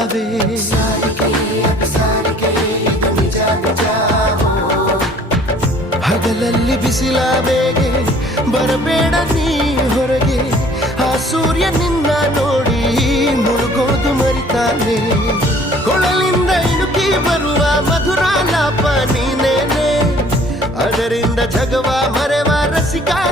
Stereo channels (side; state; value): both; normal; correlation 0.55